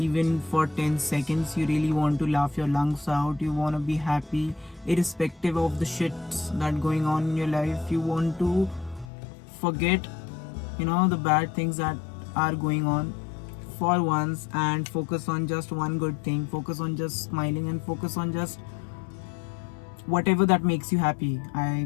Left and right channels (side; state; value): right; drops out; at 9.1 s